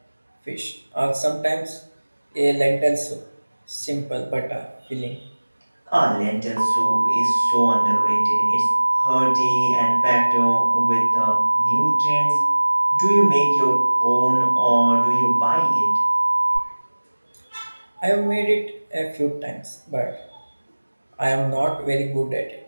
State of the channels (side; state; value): both; inverted; correlation -1.00